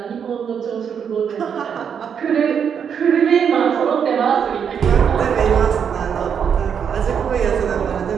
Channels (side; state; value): left; quieter; 7.5 dB